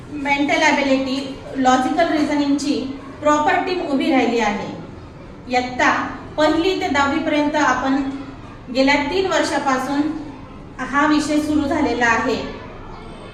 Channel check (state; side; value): identical; both; correlation 1.00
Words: मेंटल ॲबिलिटी, लॉजिकल रिझनिंगची प्रॉपर टीम उभी राहिली आहे. इयत्ता 1ली ते 10वी पर्यंत आपण गेल्या 3 वर्षापासून हा विषय सुरू झालेला आहे